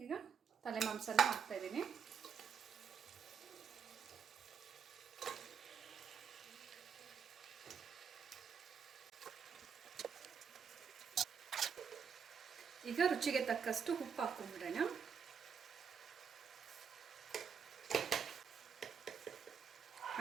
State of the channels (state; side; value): quieter; left; 6.8 dB